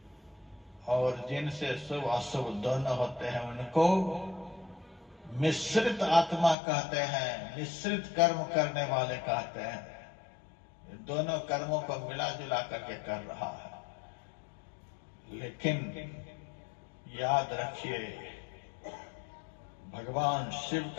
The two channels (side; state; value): right; drops out; at 6.6 s